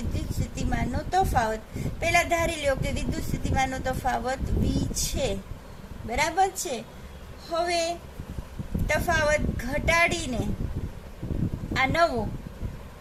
સ્થિતિમાનનો તફાવત, પહેલા ધારી લો કે વિદ્યુત સ્થિતિમાનનો તફાવત V છે, બરાબર છે. હવે તફાવત ઘટાડીને આ નવો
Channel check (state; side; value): identical; both; correlation 1.00